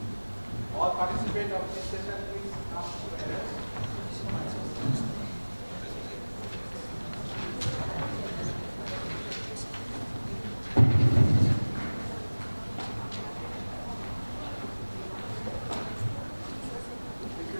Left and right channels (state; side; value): inverted; both; correlation -1.00